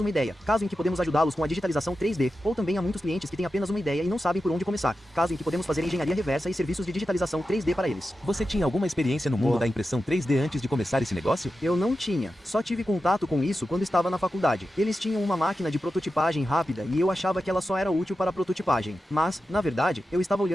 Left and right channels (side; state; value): both; normal; correlation 0.91